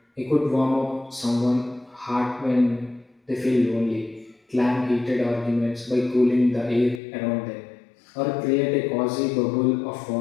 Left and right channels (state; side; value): drops out; right; at 7.0 s